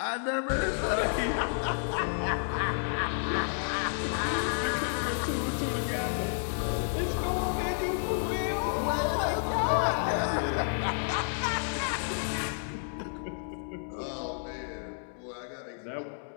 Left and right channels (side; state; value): right; silent; digital silence